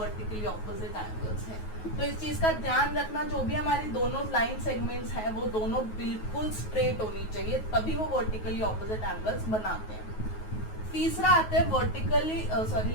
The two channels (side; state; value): right; late; 9.3 ms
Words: ऑपोजिट एंगल्स है। तो इस चीज का ध्यान रखना, जो भी हमारी दोनों लाइन सेगमेंट्स हैं वो दोनों बिल्कुल स्ट्रेट होनी चाहिए, तभी वो वर्टिकली ऑपोजिट एंगल्स बनाते हैं। तीसरा आता है वर्टिकली